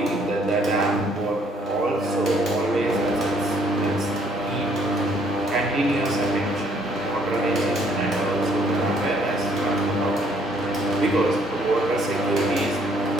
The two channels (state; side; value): normal; both; correlation 0.65